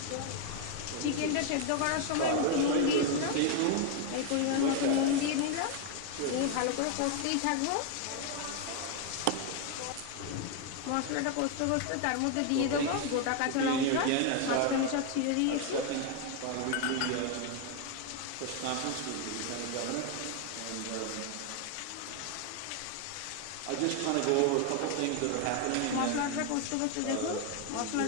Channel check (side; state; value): both; different; correlation 0.01